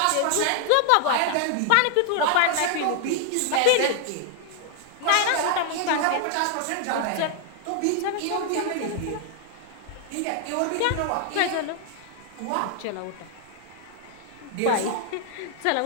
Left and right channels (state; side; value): different; both; correlation 0.00